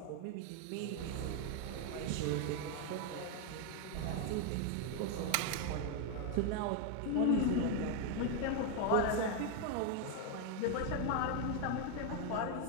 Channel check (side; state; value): both; different; correlation 0.01